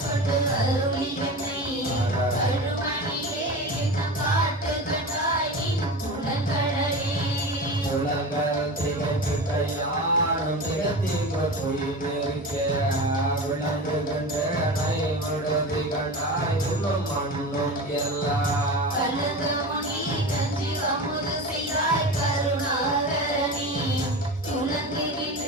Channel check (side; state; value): both; normal; correlation 0.29